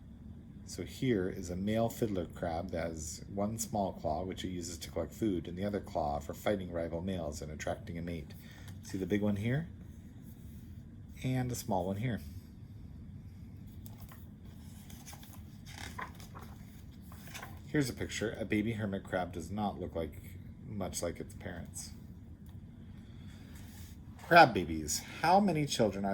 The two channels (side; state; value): both; identical; correlation 1.00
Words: So here is a male fiddler crab that has one small claw, which it uses to collect food, and the other claw for fighting rival males and attracting a mate. See the big one here? And a small one here. Here's a picture. A baby hermit crab does not look much like its parents. Crab babies. How many children